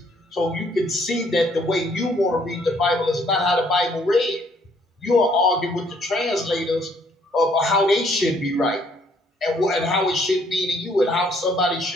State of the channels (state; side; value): normal; both; correlation 0.65